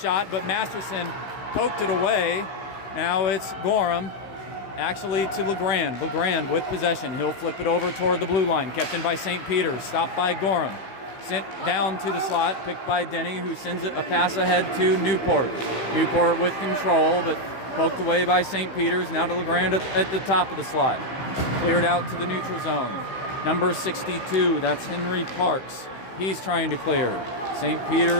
but Masterson poked it away. Now it's Gorham, actually to LeGrand. LeGrand with possession. He'll flip it over toward the blue line, kept in by St. Peter's, stopped by Gorham. Sent down to the slot, picked by Denny, who sends it a pass ahead to Newport. Newport with control, but poked away by St. Peter's. Now to LeGrand at the top of the slot. Cleared out to the neutral zone. Number 62, that's Henry Parks. He's trying to clear. St.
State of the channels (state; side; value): late; right; 15 ms